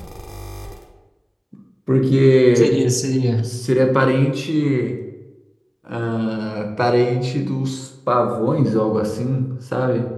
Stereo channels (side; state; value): both; identical; correlation 1.00